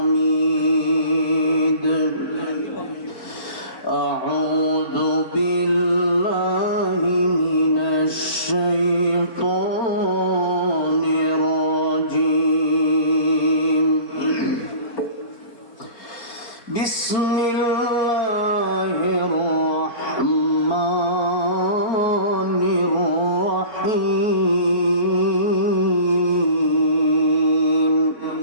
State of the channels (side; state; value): right; late; 4.4 ms